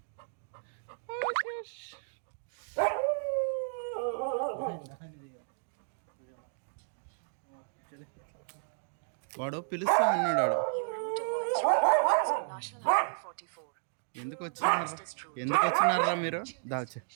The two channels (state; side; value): silent; left; digital silence